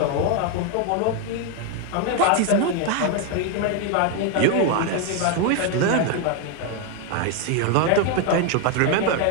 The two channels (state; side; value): different; both; correlation 0.01